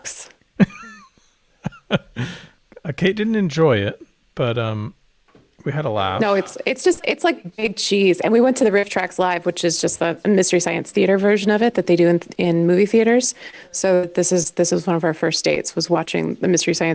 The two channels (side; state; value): both; identical; correlation 1.00